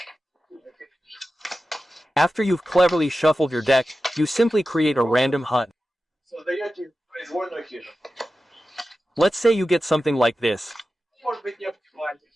After you've cleverly shuffled your deck, you simply create a random hut. Let's say you get something like this.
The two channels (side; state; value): both; normal; correlation 0.93